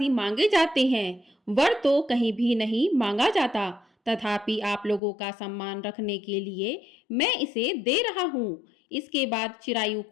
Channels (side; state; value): right; drops out; at 5.0 s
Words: मांगे जाते हैं, वर तो कहीं भी नहीं मांगा जाता। तथापि आप लोगों का सम्मान रखने के लिए मैं इसे दे रहा हूँ। इसके बाद चिरायु